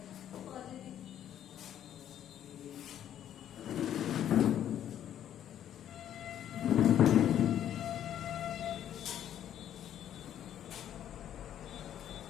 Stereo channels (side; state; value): right; quieter; 10.6 dB